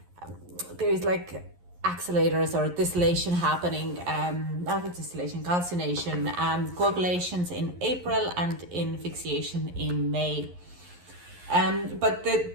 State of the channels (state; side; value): late; left; 11 ms